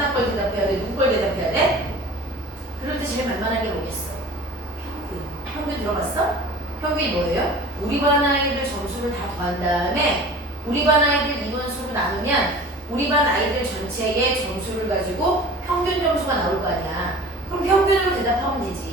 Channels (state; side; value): normal; both; correlation 0.41